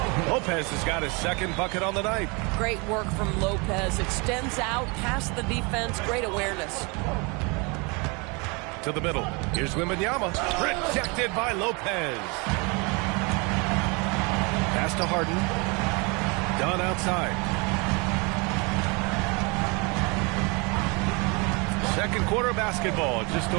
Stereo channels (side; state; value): left; quieter; 29.7 dB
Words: Lopez has got his second bucket on the night. Great work from Lopez. Extends out past the defense. Great awareness. To the middle. Here's Wembanyama. Rejected by Lopez. Pass to Harden. Done outside. Second quarter basketball. Just